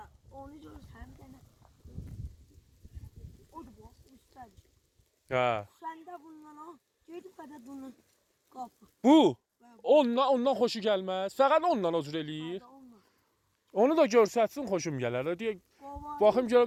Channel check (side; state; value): both; identical; correlation 1.00